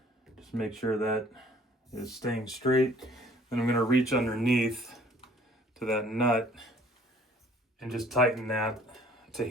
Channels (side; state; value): both; normal; correlation 0.55